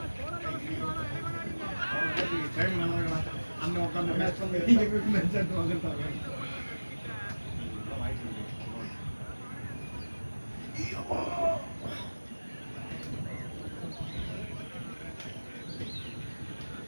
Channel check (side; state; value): both; inverted; correlation -1.00